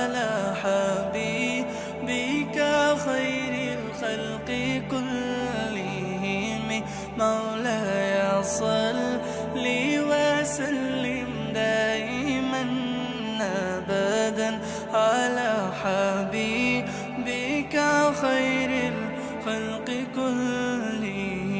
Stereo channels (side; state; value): both; identical; correlation 1.00